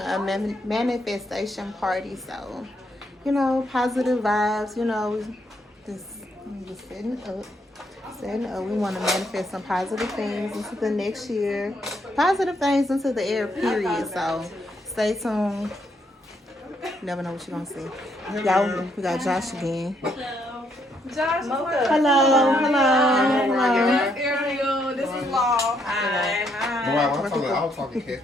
manifestation party, so positive vibes. Just setting up. We want to manifest some positive things into the next year, positive things into the air. Period. So stay tuned. Never know what you're gonna see. Y'all, we got Josh again. Josh, Hello. Ariel, this is Law. Hi. I was talking cash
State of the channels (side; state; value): both; normal; correlation 0.74